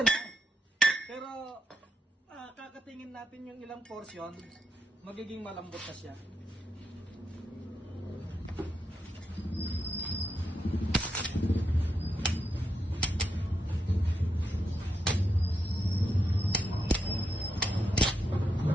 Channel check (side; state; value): both; normal; correlation 0.83